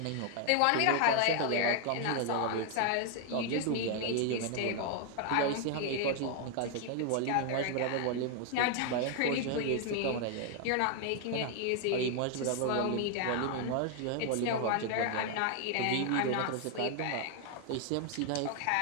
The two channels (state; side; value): different; both; correlation 0.00